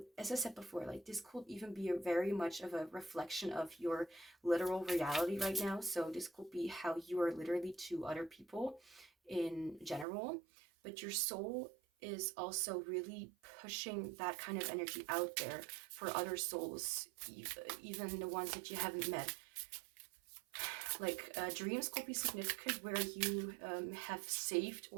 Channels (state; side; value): drops out; left; at 10.1 s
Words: as I said before, like this could even be very much of a reflection of your literal reality right now. So this could be how you are literally to other people in general, but your soul is also really pushing that kind of energy out there for other souls, even the ones that you haven't met. Like dreams could be significant, where you have saved